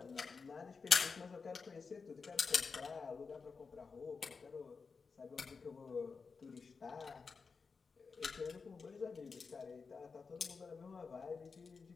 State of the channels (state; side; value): quieter; right; 5.0 dB